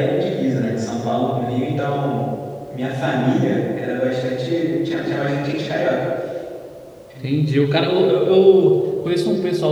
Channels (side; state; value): both; identical; correlation 1.00